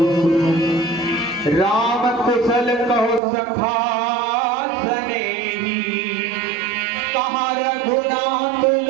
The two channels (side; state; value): left; drops out; at 3.2 s